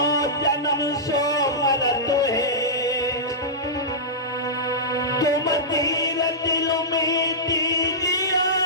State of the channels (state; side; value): normal; both; correlation -0.15